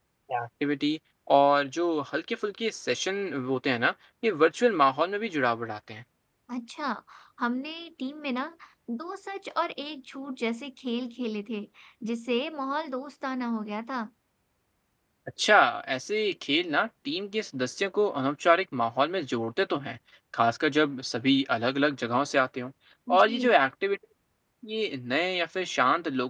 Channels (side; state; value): both; identical; correlation 1.00